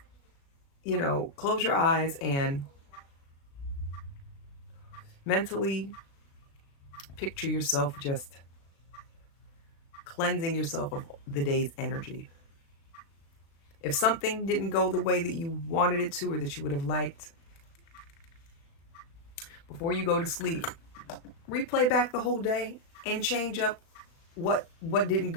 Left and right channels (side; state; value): right; late; 36 ms